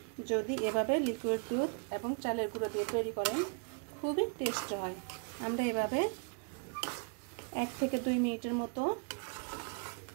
যদি এভাবে লিকুইড দুধ এবং চালের গুঁড়ো দিয়ে তৈরি করেন খুবই টেস্ট হয়। আমরা এভাবে 1 থেকে 2 মিনিটের মতো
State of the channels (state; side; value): quieter; left; 38.2 dB